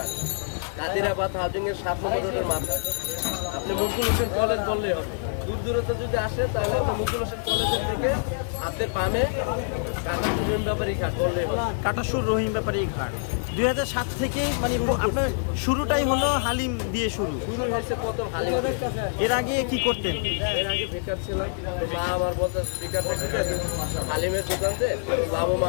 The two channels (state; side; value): silent; right; 60 dB below the other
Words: কাদিরাবাদ হাউজিংয়ের 7 নম্বর রোডের মাথায়। আপনি মুকুল হোসেন কলেজ বললেই হবে। দূর দূরত্ব যদি আসে তাহলে আপনি মুকুল হোসেন কলেজের থেকে হাতের বামে কাটাসুর ব্যাপারী ঘাট বললেই হবে। কাটাসুর রহিম ব্যাপারী ঘাট। 2007 থেকে মানে আপনার শুরুটাই হলো হালিম দিয়ে শুরু হয়েছে প্রথম হালিম। এর আগে কি করতেন? এর আগে বেকার ছিলাম, তো মা আমার বলতে বেকার থাকতে হালিমের দোকানতে